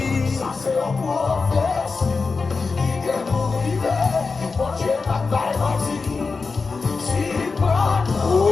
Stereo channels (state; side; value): quieter; right; 4.4 dB